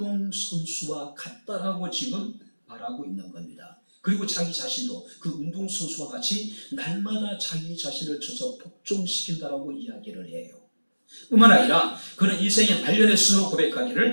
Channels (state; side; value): inverted; both; correlation -1.00